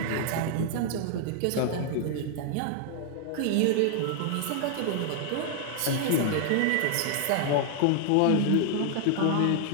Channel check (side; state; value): both; different; correlation 0.00